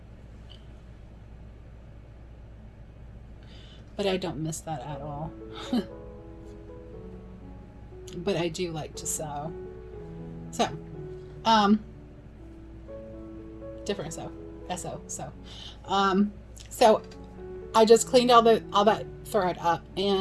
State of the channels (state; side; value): identical; both; correlation 1.00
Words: But I don't miss that at all. But I do like to sew. So, different sew. So I just cleaned all that thread up,